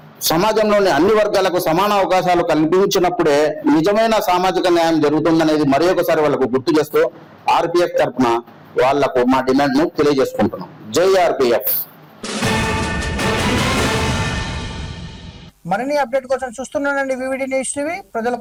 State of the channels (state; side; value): identical; both; correlation 1.00